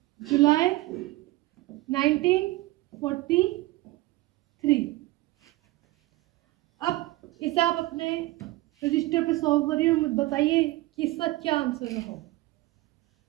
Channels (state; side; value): quieter; left; 18.9 dB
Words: जुलाई 1943। अब इसे आप अपने रजिस्टर पे सॉल्व करिए और मुझे बताइए कि इसका क्या आंसर होगा।